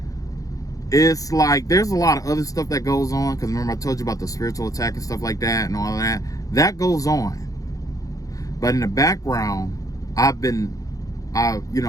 It's like there's a lot of other stuff that goes on, because remember I told you about the spiritual attack and stuff like that and all that. That goes on. But in the background, I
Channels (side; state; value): right; late; 0.17 ms